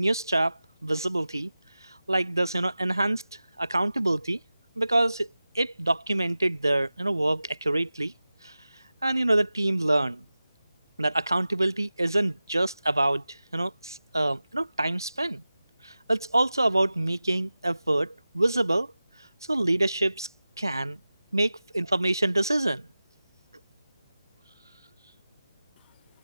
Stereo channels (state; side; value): inverted; both; correlation -0.95